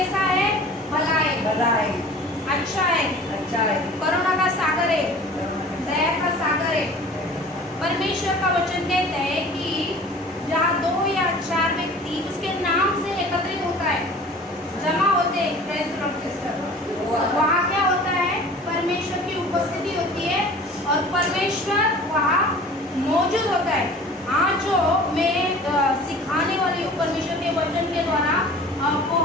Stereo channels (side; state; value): both; normal; correlation 0.44